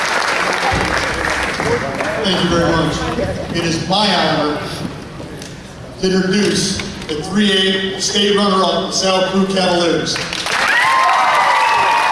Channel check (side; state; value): both; identical; correlation 1.00